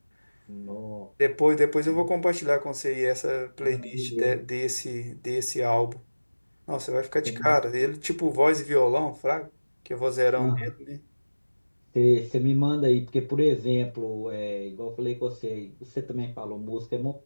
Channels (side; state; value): both; inverted; correlation -1.00